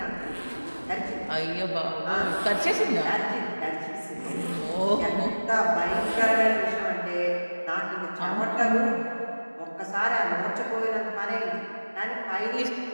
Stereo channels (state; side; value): inverted; both; correlation -1.00